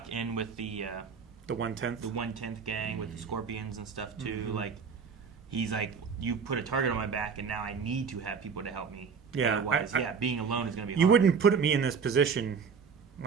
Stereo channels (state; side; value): quieter; left; 6.0 dB